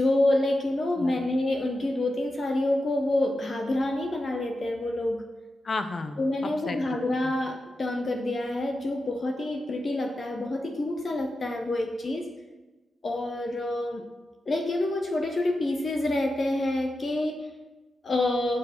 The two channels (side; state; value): both; normal; correlation 0.90